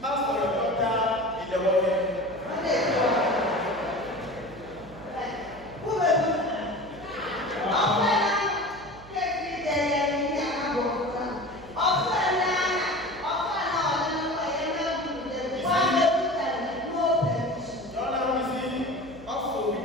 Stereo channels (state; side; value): noise; right; hum, 20 dB below the sound